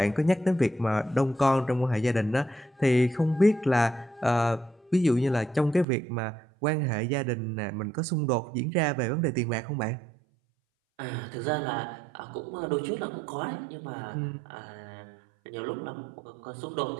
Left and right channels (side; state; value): left; drops out; at 5.9 s